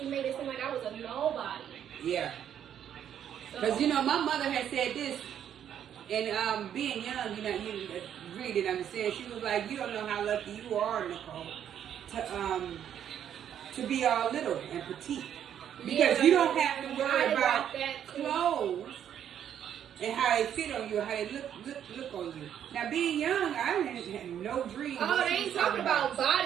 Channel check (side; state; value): left; quieter; 9.6 dB